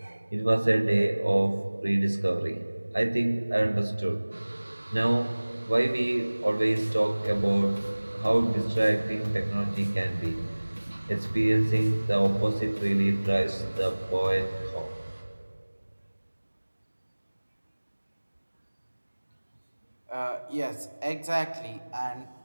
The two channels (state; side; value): inverted; both; correlation -1.00